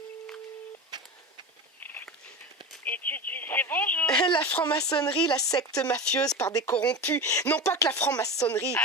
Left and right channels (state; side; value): normal; both; correlation 0.26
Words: Étude d'huissier, bonjour. La franc-maçonnerie, la secte mafieuse par des corrompus. Non pas que la franc-maçonnerie.